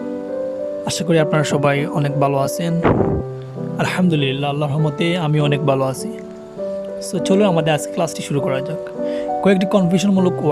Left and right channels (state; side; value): identical; both; correlation 1.00